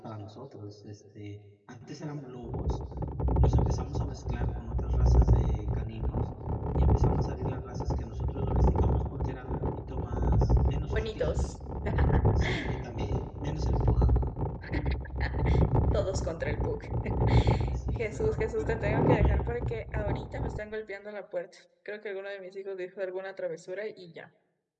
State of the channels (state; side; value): identical; both; correlation 1.00